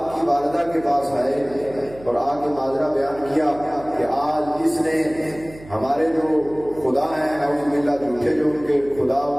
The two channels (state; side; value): noise; right; hum, 19 dB below the sound